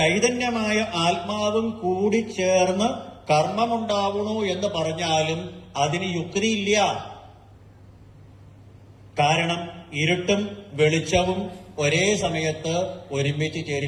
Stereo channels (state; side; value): identical; both; correlation 1.00